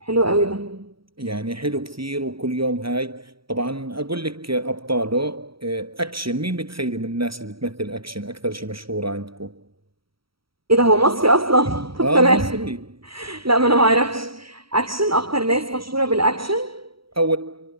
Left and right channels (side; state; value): left; late; 0.75 ms